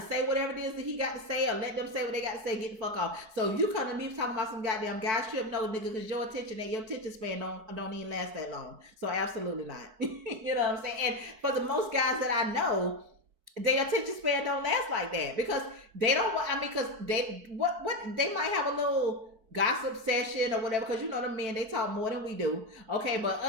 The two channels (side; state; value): left; late; 4.5 ms